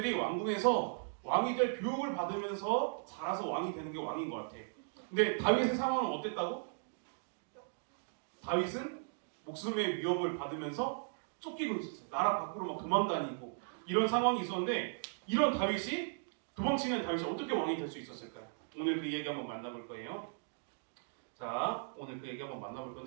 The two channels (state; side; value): silent; left; digital silence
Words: 왕궁에서 왕이 될 교육을 받으면서 자라서 왕이 되는 게 왕인 것 같아. 근데 다윗의 상황은 어땠다고? 다윗은 목숨의 위협을 받으면서 쫓기고 있었어요. 나라 밖으로 막 도망다니고 이런 상황이 있었는데 이런 다윗이 도망치는 다윗이 어떻게 왕이 될 수 있었을까요? 오늘 그 얘기 한번 만나볼 거예요. 자, 오늘 그 얘기 한번 만나볼